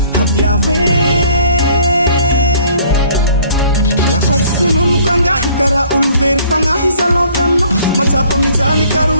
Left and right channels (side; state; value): both; inverted; correlation -0.56